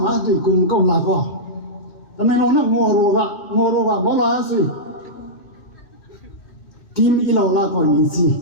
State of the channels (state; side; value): late; right; 2.6 ms